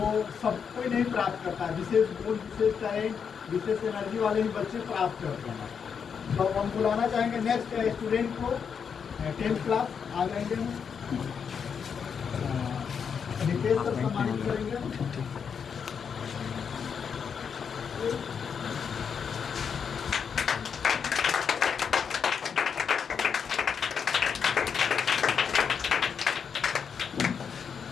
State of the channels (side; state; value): right; quieter; 6.8 dB